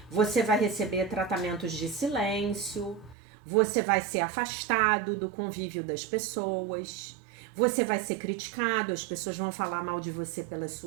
você vai receber tratamentos de silêncio, você vai ser afastado do convívio das pessoas, você vai ser criticado, as pessoas vão falar mal de você pelas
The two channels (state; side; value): drops out; left; at 3.2 s